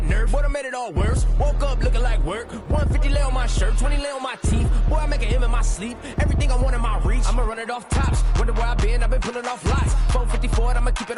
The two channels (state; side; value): identical; both; correlation 1.00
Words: nerve. Boy, I made it all worse. Woke up looking like work. 150 lay on my shirt, 20 lay on my teeth. Boy, I make an M in my sleep. Everything I want in my reach. I'ma run it off tops. Wonder where I've been pulling off lots. 454, I'ma keep